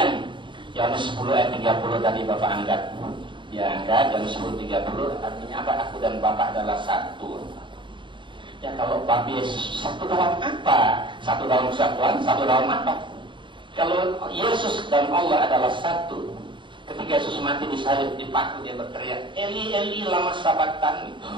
Yohanes 10 ayat 30 tadi Bapak angkat, dia angkat Yohanes 10:30 artinya apa? Aku dan Bapak adalah satu. Ya kalau Bapak Yesus satu dalam apa? Satu dalam kesatuan, satu dalam apa? Kalau Yesus dan Allah adalah satu, Ketika Yesus mati disalib, dipaku, dia berteriak, Eli, Eli, lama sabachthani.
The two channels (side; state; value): left; late; 0.23 ms